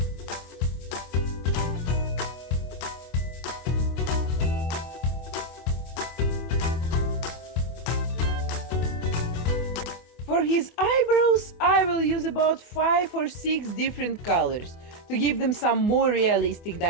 For his eyebrows, I will use about 5 or 6 different colors to give them some more realistic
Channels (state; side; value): late; right; 24 ms